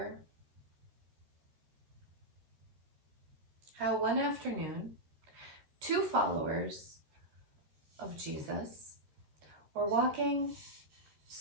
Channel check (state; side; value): late; left; 14 ms